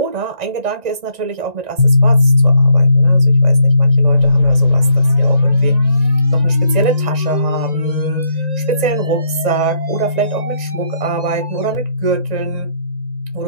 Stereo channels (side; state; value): left; late; 1.9 ms